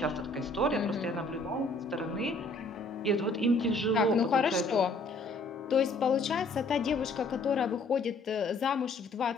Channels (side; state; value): right; quieter; 3.0 dB